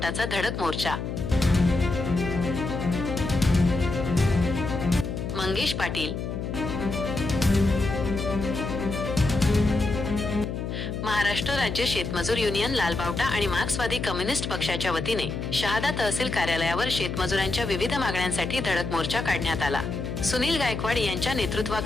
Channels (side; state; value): left; noise; hum, 4 dB below the sound